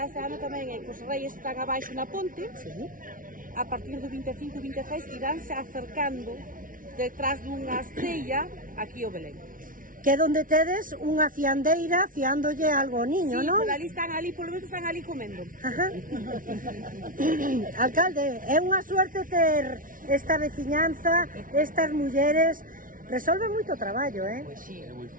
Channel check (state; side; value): late; left; 0.39 ms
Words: este ano tamén é que os reis están abaixo na ponte. A partir do 25 e 26 iránse acercando detrás dunha estrella aquí ao Belén. Que é onde tedes unha fiandeira fiándolle algo ao niño, sí, non? Sí, polo menos están ali comendo. Ajá. Alcalde, é unha suerte ter esta veciñanza, estas mulleres. Resolve moito traballo, Pues sí. Es muy